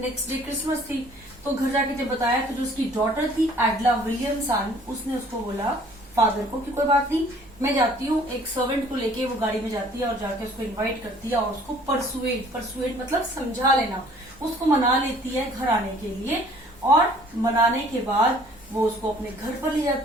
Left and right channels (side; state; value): both; normal; correlation 0.55